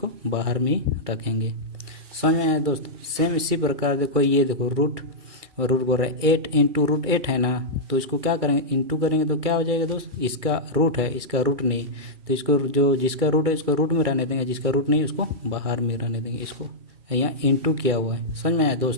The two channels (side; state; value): left; late; 2.3 ms